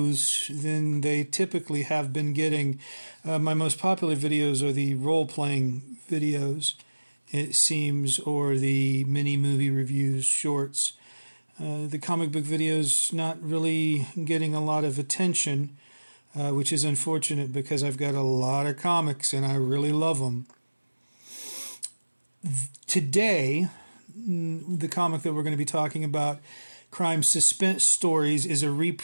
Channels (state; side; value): inverted; both; correlation -1.00